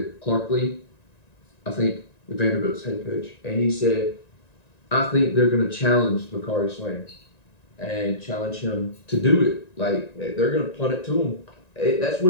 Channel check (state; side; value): late; right; 1.9 ms